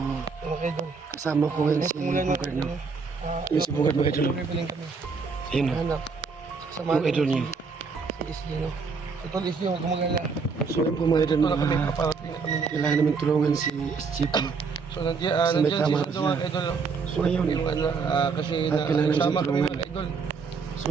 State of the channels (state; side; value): quieter; left; 5.0 dB